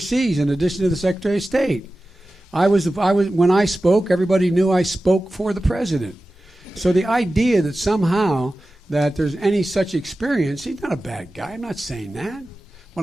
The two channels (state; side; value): normal; both; correlation 0.95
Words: in addition to the Secretary of State. When I spoke, everybody knew I spoke for the president. So the idea that somehow that there's any such experience, he's not a bad guy. I'm not saying that.